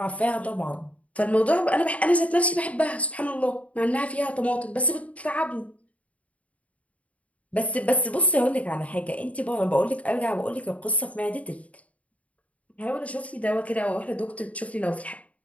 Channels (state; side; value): late; right; 0.067 ms